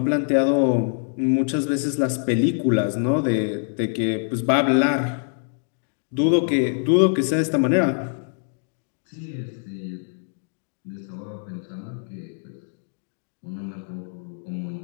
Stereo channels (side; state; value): right; silent; 62 dB below the other